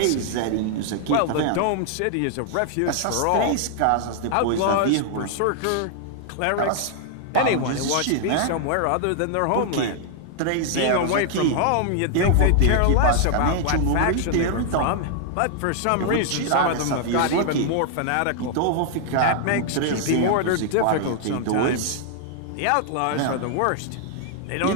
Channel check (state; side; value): different; both; correlation 0.00